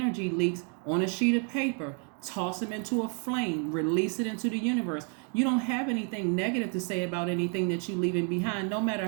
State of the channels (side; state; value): left; quieter; 37.9 dB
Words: leaks on a sheet of paper. Toss them into a flame. Release it into the universe. You don't have anything negative to say about anything that you're leaving behind. No